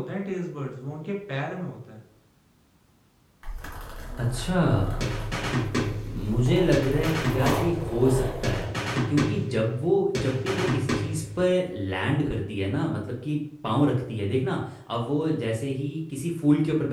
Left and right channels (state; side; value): identical; both; correlation 1.00